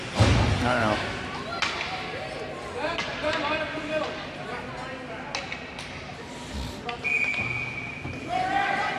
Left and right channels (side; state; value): both; identical; correlation 1.00